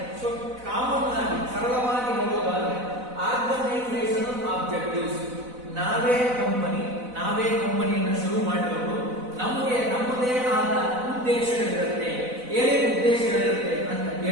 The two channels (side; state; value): left; late; 4.0 ms